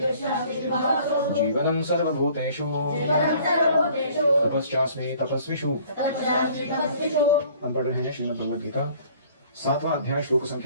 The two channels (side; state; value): both; inverted; correlation -0.54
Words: जीवनं सर्वभूतेषु तपश्चास्मि तपस्विषु। हम पढ़ रहे हैं श्रीमद् भगवद गीता 7वां अध्याय श्लोक